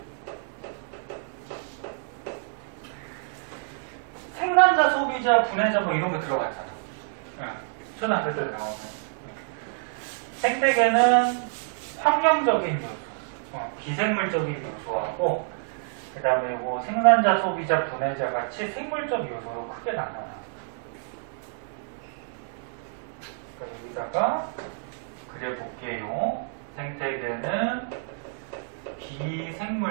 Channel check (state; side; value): silent; left; digital silence